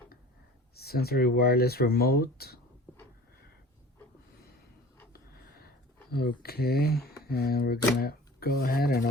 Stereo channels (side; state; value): both; normal; correlation 0.42